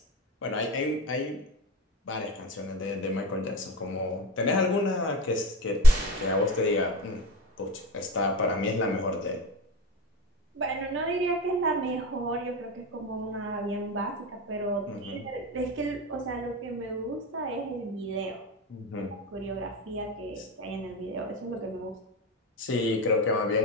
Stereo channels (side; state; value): both; normal; correlation 0.28